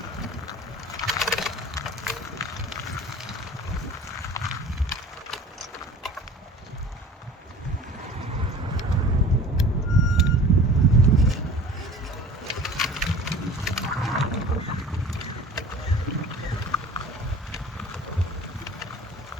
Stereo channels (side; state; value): both; normal; correlation 0.43